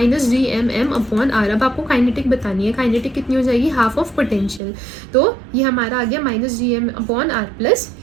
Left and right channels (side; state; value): left; drops out; at 4.6 s